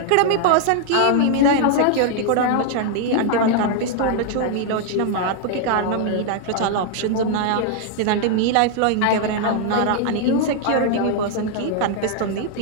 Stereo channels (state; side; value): different; both; correlation 0.00